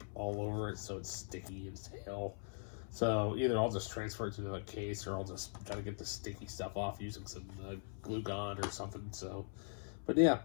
all over it so it's sticky as hell. So either I'll just transfer it to the case, or I'll just try to get the sticky stuff off using some glue gun or something. So, but yeah,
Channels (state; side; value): silent; right; 50 dB below the other